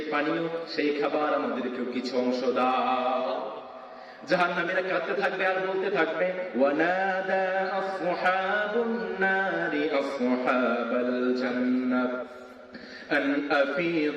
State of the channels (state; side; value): identical; both; correlation 1.00